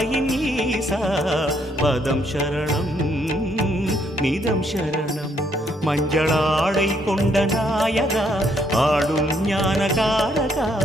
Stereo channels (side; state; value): both; normal; correlation 0.71